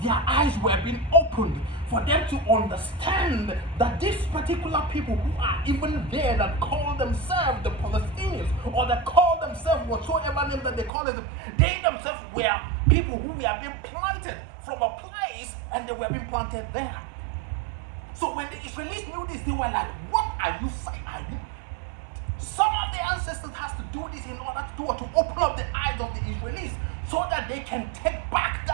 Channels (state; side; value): drops out; left; at 10.9 s